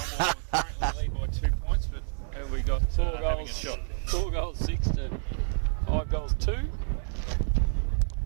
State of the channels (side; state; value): left; silent; 59 dB below the other